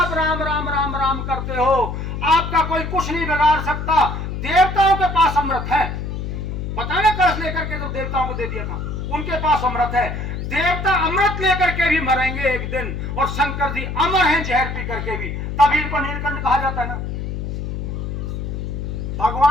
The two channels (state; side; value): noise; left; hum, 5 dB below the sound